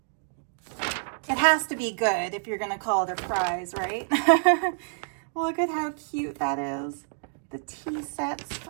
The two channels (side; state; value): left; silent; digital silence